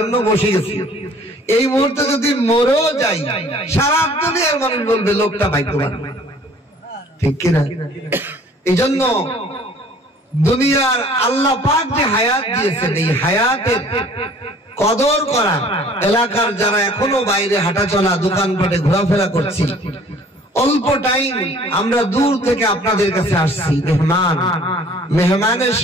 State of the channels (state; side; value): normal; both; correlation 0.53